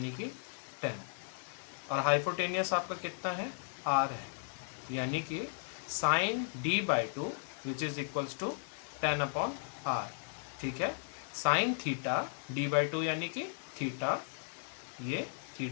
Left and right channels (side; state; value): right; silent; digital silence